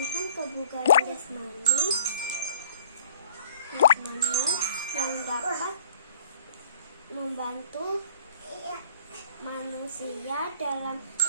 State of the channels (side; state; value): both; inverted; correlation -0.53